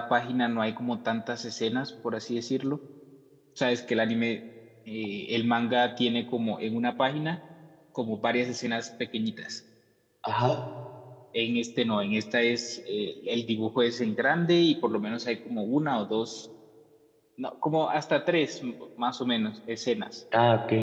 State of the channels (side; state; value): both; identical; correlation 1.00